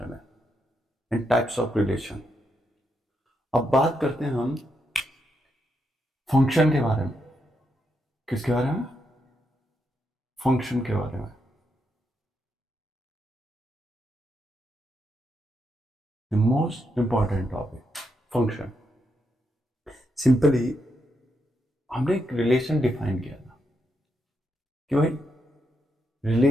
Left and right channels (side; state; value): both; normal; correlation 0.81